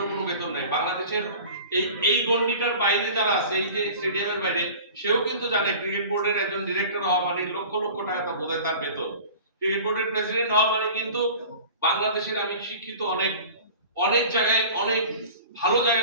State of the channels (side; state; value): both; inverted; correlation -0.41